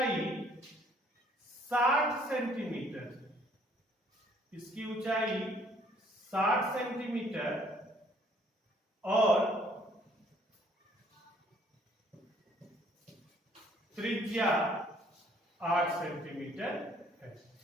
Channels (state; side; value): normal; both; correlation 0.61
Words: 60 सेंटीमीटर, इसकी ऊंचाई 60 सेंटीमीटर और त्रिज्या 8 सेंटीमीटर है।